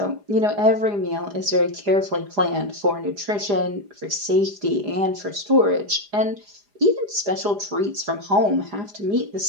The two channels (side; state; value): left; late; 4.9 ms